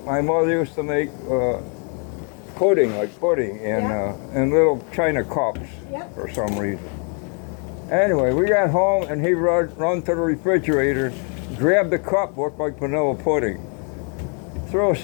my mother used to make pudding in little china cups for some reason. Anyway, we got home and he run to the refrigerator, grabbed the cup, looked like vanilla pudding. Throw a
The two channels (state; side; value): quieter; right; 39.6 dB